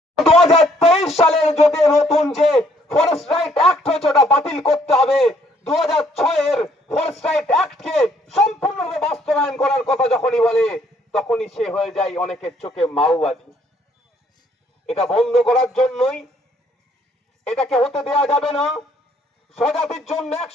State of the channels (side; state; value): both; normal; correlation 0.65